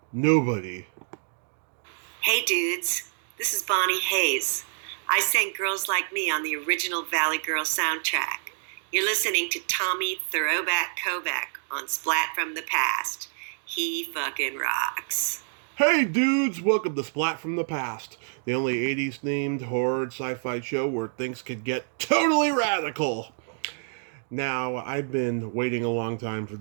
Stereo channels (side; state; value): left; silent; 60 dB below the other